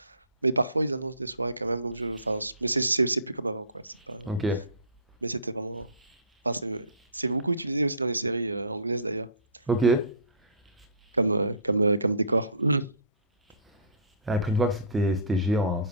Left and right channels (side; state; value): both; inverted; correlation -0.38